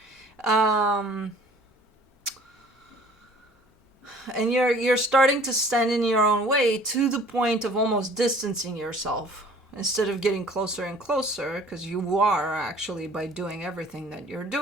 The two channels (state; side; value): normal; both; correlation 0.51